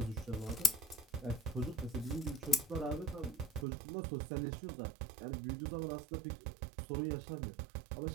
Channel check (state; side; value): drops out; left; at 3.7 s